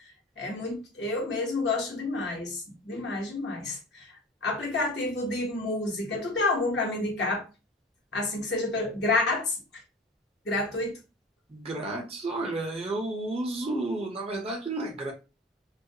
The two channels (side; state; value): both; normal; correlation 0.36